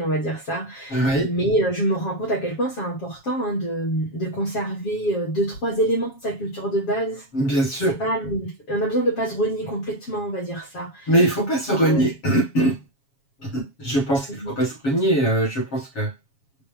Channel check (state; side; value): late; right; 7.3 ms